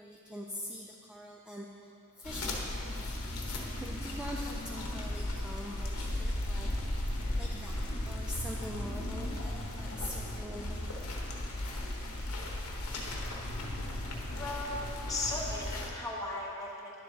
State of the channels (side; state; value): both; normal; correlation 0.70